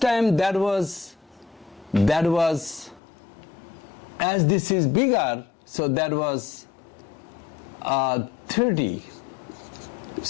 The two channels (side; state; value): right; drops out; at 3.0 s